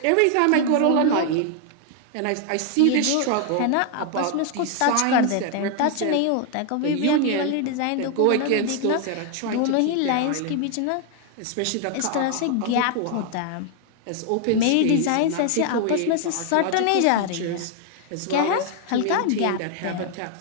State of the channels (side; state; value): both; different; correlation 0.00